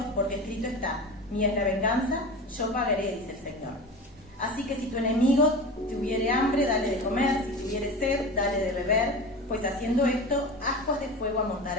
porque escrito está, mía es la venganza, yo pagaré, dice el Señor. Así que si tu enemigo tuviere hambre, dale de comer, si tuviere sed, dale de beber, pues haciendo esto, ascuas de fuego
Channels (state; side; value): normal; both; correlation 0.31